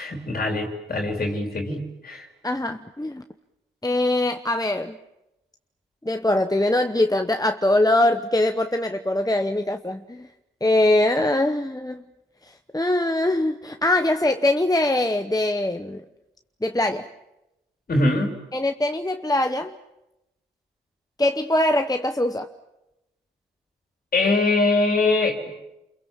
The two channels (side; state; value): both; normal; correlation 0.73